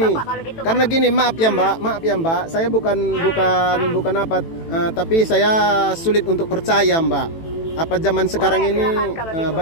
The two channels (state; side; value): late; right; 18 ms